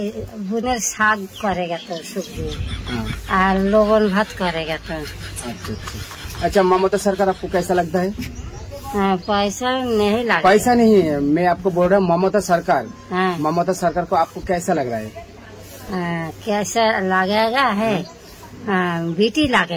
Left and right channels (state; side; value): identical; both; correlation 1.00